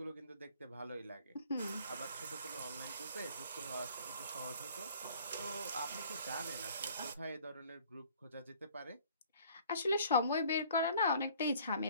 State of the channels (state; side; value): inverted; both; correlation -0.53